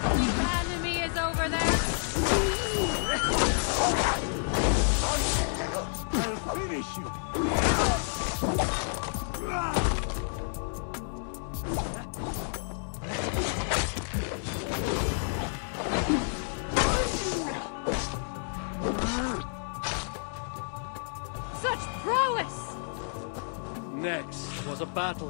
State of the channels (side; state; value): right; silent; 58 dB below the other